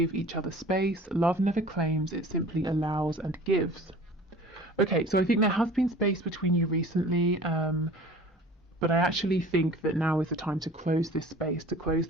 each other space. Love never claims, it simply allows and gives. Okay, so I think there has been space between you recently, but I actually think that now is the time to close this space, to close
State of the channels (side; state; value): both; normal; correlation 0.44